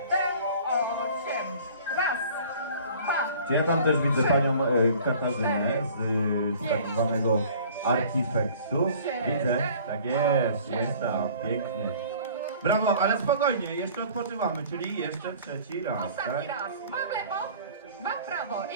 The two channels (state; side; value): inverted; both; correlation -0.49